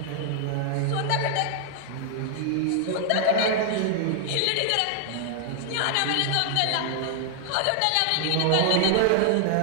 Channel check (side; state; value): both; different; correlation 0.00